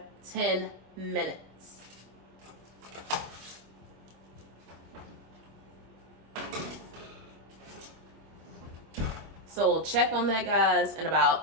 10 minutes. So we'll check on that, guys, in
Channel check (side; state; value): left; late; 25 ms